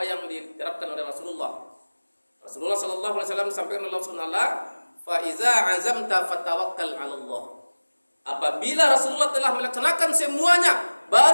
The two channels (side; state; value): both; inverted; correlation -1.00